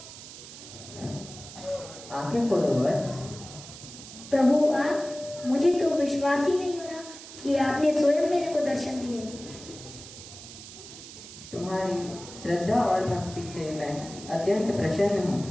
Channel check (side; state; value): right; noise; hiss, 14 dB below the sound